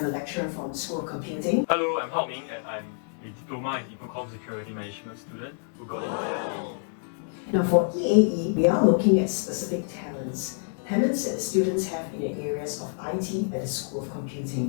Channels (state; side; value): silent; right; digital silence